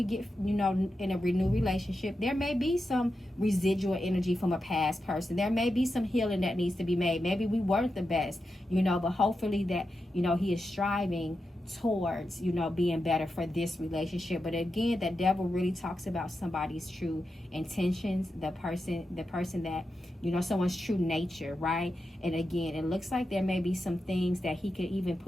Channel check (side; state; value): both; normal; correlation 0.89